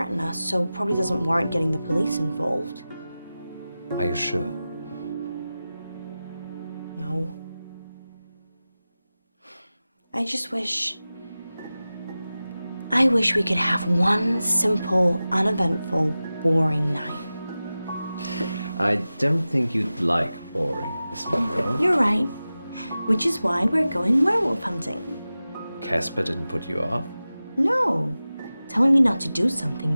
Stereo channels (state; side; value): inverted; both; correlation -0.95